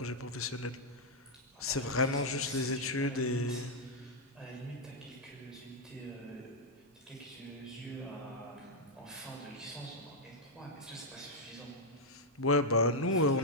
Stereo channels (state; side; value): normal; both; correlation -0.01